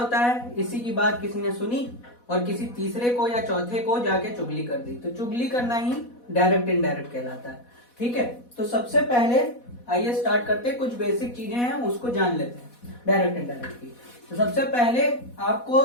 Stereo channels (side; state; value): right; late; 4.1 ms